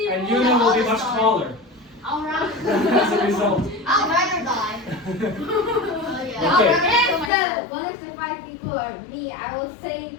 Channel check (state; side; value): drops out; right; at 7.3 s